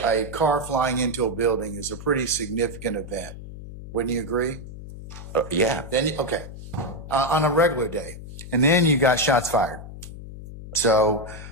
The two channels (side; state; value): left; noise; hum, 12 dB below the sound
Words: a car flying into a building is a pretty significant event. Wouldn't you agree? Yeah. Then, okay, on a regular day. And then you got shots fired. So